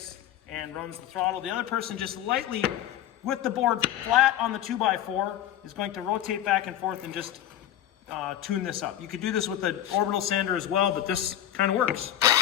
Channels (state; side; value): quieter; right; 11.8 dB